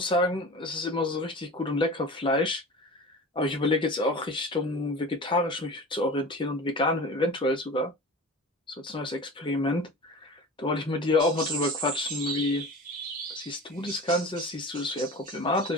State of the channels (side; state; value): both; normal; correlation 0.35